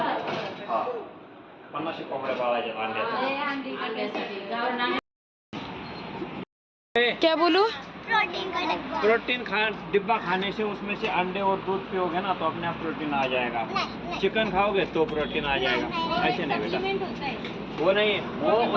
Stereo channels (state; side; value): identical; both; correlation 1.00